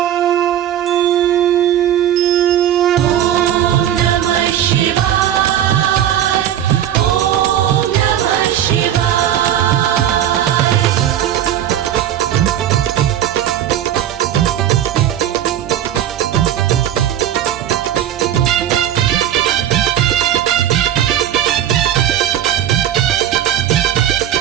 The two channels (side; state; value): left; quieter; 11.0 dB